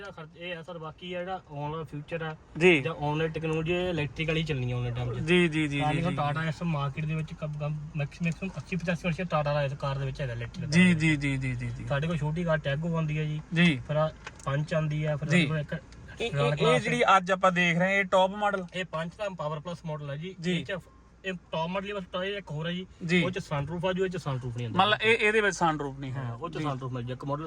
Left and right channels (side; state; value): both; identical; correlation 1.00